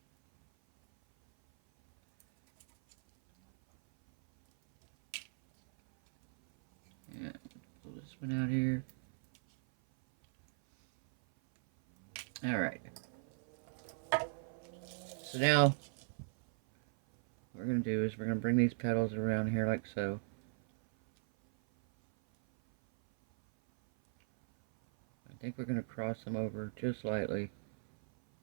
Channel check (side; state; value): left; silent; 53 dB below the other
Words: And pull this one out here. Alright. So now, what we're going to do is we're going to bring these petals around here like so. I think we're going to cross them over just lightly.